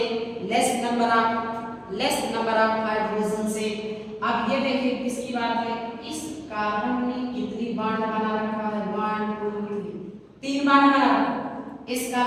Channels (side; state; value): both; identical; correlation 1.00